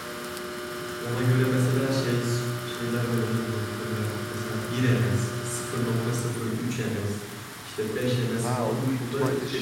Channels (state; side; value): identical; both; correlation 1.00